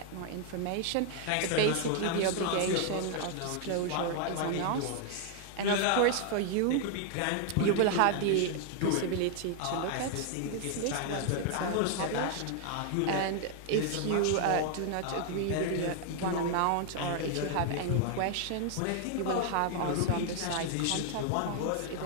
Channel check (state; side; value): different; both; correlation 0.00